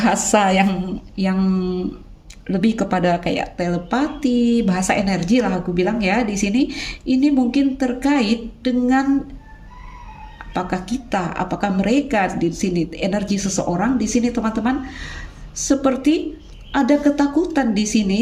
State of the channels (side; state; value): both; identical; correlation 1.00